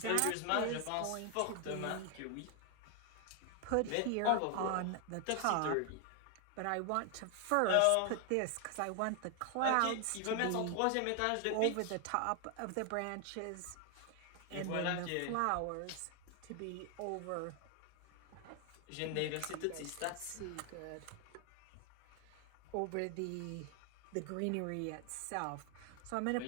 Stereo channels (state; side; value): different; both; correlation 0.00